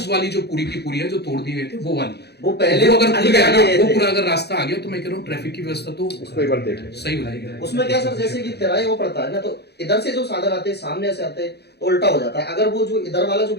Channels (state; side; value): late; right; 0.48 ms